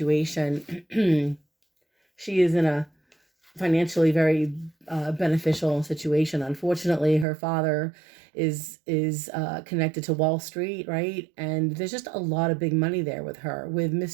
she is in a financially very beneficial situation. Unfortunately, her father is connected to Wall Street, right? And there's just a lot of big money there with her. With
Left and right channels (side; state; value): left; drops out; at 7.2 s